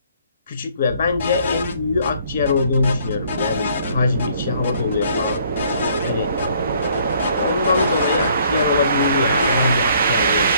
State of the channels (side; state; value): both; inverted; correlation -0.62